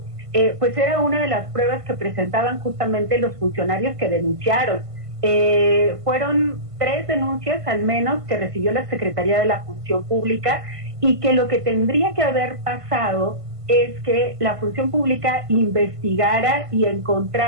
pues era una de las pruebas que presentaban justamente los funcionarios que denunciaron. Fueron 3 denuncias al menos que recibió la Secretaría de la Función Pública, y que lo que tendría que haber pasado es que la Función Pública investigara y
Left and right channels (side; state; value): left; late; 1.5 ms